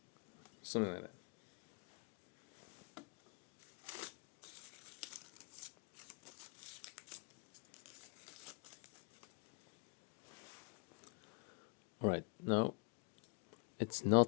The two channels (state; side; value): quieter; right; 33.8 dB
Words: something like that. Alright, now it's